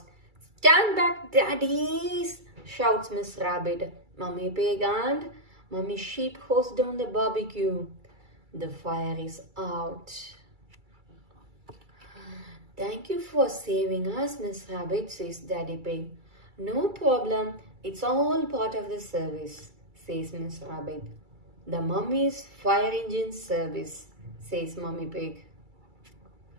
Stand back, daddies, shouts Miss Rabbit. Mummy Pig and Mummy Sheep hose down the barbecue. The fire is out. Thank you for saving us, Miss Rabbit, says Daddy Pig. No problem, it's all part of the service, says Miss Rabbit. The mummy's fire engine service, says Mummy Pig.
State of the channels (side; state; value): left; late; 2.3 ms